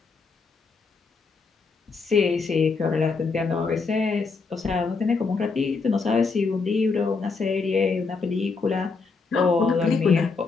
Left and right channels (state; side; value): quieter; right; 4.5 dB